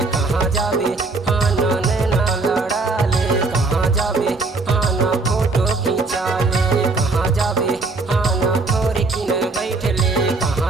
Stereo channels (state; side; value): quieter; left; 3.6 dB